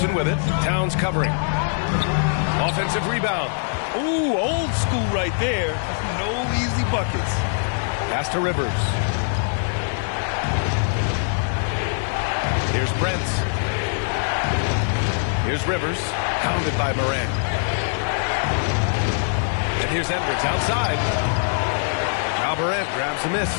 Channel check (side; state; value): right; silent; 60 dB below the other